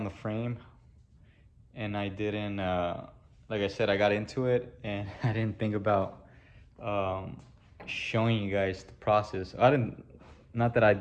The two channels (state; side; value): identical; both; correlation 1.00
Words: the frame, and I didn't, like I said, I got into it, and I didn't think about showing you guys the process. Not that I